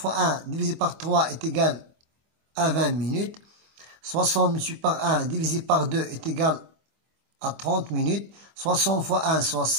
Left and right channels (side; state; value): left; late; 25 ms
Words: 1 divisé par 3 est égal à 20 minutes. 60 multiplié par 1 divisé par 2 est égal à 30 minutes. 60 fois 1,